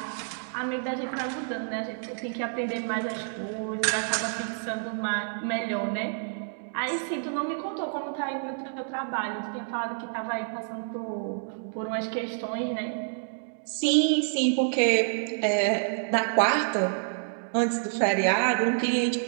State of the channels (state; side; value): silent; left; digital silence